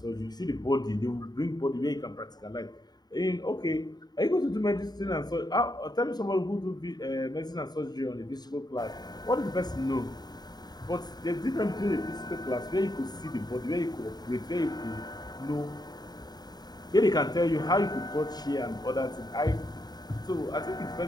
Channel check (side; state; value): right; late; 0.20 ms